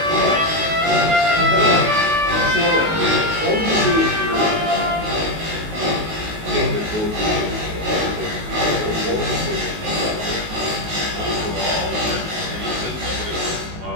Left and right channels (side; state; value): left; late; 19 ms